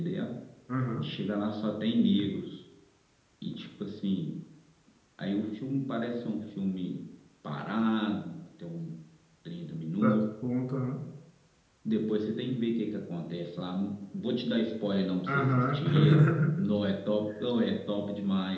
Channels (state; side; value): identical; both; correlation 1.00